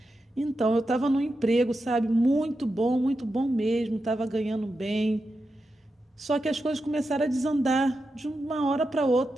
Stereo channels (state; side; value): normal; both; correlation 0.89